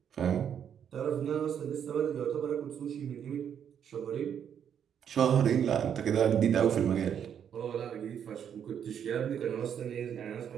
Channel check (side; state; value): left; quieter; 8.5 dB